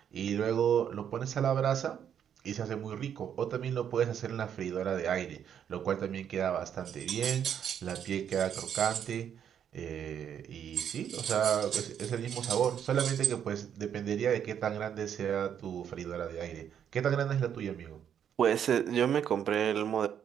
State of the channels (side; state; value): left; quieter; 8.8 dB